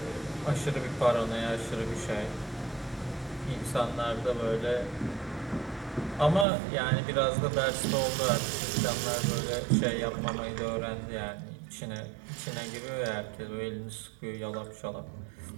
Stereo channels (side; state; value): left; drops out; at 6.5 s